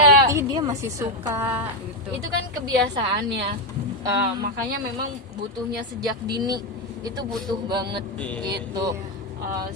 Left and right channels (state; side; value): normal; both; correlation 0.06